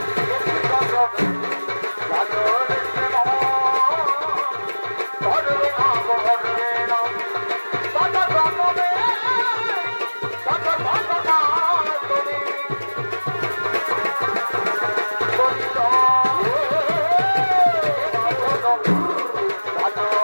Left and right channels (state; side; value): inverted; both; correlation -1.00